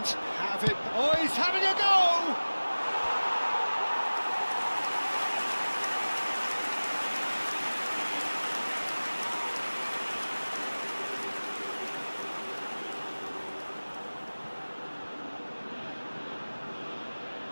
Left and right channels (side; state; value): both; inverted; correlation -1.00